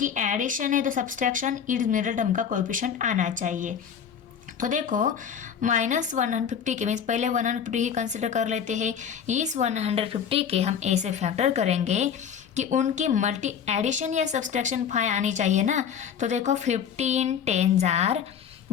एडिशन है तो सब्सट्रैक्शन इस मिडिल टर्म का कोएफिशिएंट आना चाहिए। तो देखो माइनस 150 के मीन्स पहले 150 ही कंसिडर कर लेते हैं। इस 150 के हम ऐसे फैक्टर करेंगे कि उनकी मल्टी एडिशन या सब्सट्रैक्शन 5 आनी चाहिए ना। तो देखो 15 10 जार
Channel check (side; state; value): right; quieter; 7.8 dB